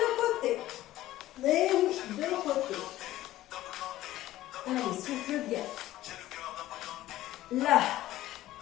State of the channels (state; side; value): quieter; right; 15.0 dB